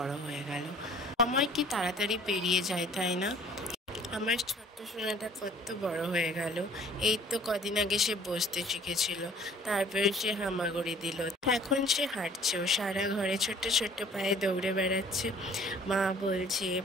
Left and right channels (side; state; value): both; normal; correlation 0.53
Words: হয়ে গেল। সময় কি তাড়াতাড়ি পেরিয়ে যায়, তাই না? আমার ছোট্ট সোনাটা কত বড় হয়ে গেল। এই তো কদিন আগে সে বসতে শিখেছিল, তারপরে সে হামাগুড়ি দিল, এখন সে হাঁটছেও, সারা ঘরে ছোট্ট ছোট্ট পায়ে দৌড়ে বেড়াচ্ছে। মা বলছে,